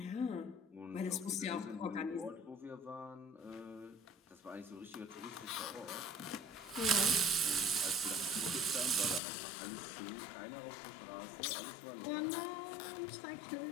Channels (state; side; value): drops out; right; at 9.2 s